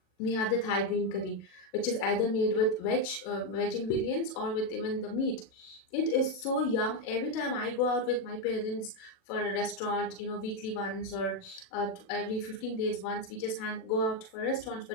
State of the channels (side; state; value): right; late; 37 ms